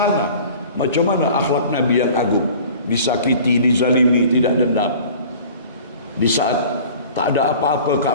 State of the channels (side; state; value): both; inverted; correlation -0.45